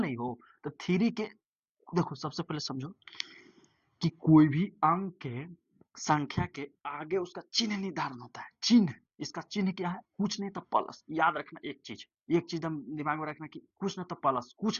नहीं हो तो थ्री के देखो सबसे पहले समझो कि कोई भी अंक के संख्या के आगे उसका चिन्ह निर्धारण होता है। चिन्ह, इसका चिन्ह क्या है, कुछ नहीं तो प्लस। याद रखना एक चीज दिमाग में रखना कि कुछ नहीं तो प्लस,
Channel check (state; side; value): identical; both; correlation 1.00